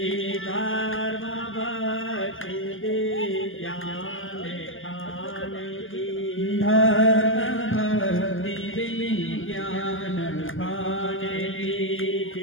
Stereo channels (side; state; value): right; late; 0.58 ms